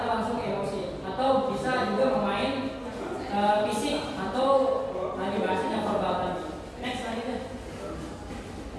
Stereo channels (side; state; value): both; identical; correlation 1.00